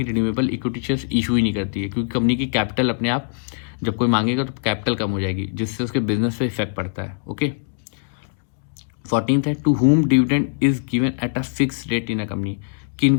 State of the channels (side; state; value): right; silent; digital silence